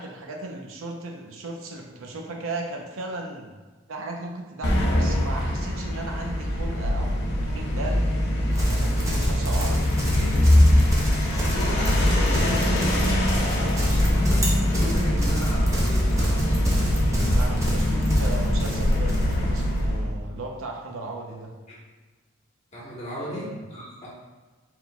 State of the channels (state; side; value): normal; both; correlation 0.86